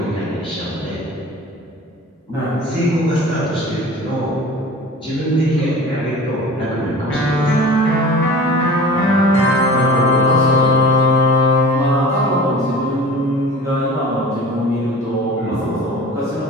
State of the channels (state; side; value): normal; both; correlation 0.40